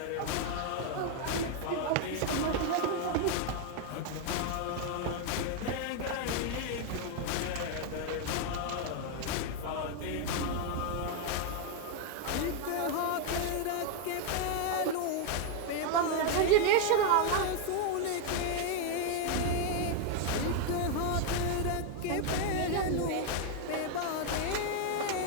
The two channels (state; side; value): different; both; correlation 0.01